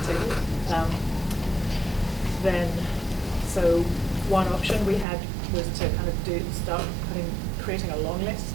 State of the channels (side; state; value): left; drops out; at 5.1 s